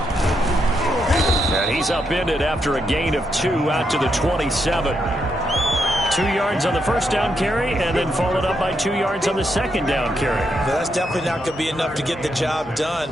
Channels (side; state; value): both; normal; correlation 0.80